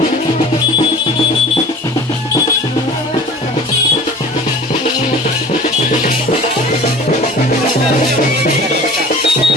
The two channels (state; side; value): normal; both; correlation 0.42